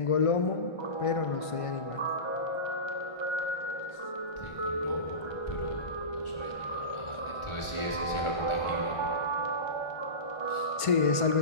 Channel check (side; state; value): right; late; 1.5 ms